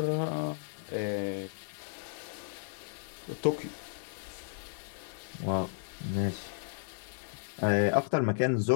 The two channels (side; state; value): right; silent; digital silence